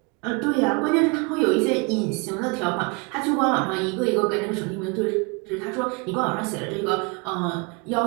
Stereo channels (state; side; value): quieter; left; 30.3 dB